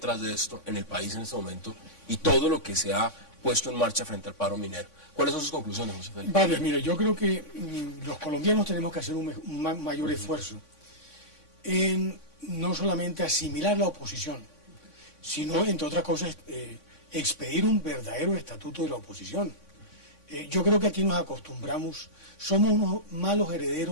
de esto en el país en este momento y todo lo que se ha puesto en marcha frente al paro minero. ¿Cuáles son sus conclusiones, José Félix? Vale, mire, yo creo que los colombianos tenemos que hacer un mayor esfuerzo en no solamente asimilar la oposición, sino, entre otras cosas, expedir un verdadero estatuto de la oposición. Yo creo que aquí nos acostumbramos, somos unos malos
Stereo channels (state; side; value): late; right; 3.5 ms